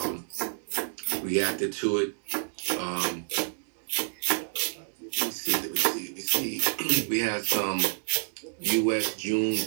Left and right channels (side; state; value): left; silent; digital silence